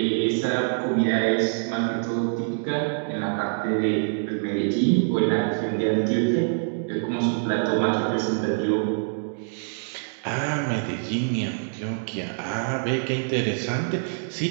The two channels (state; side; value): silent; left; digital silence